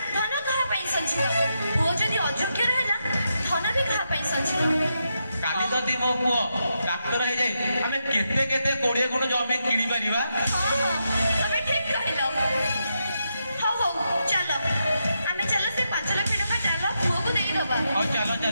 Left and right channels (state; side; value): inverted; both; correlation -0.84